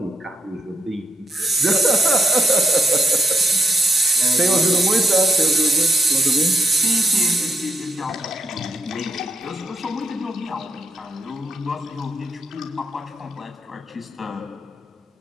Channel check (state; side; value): normal; both; correlation 0.80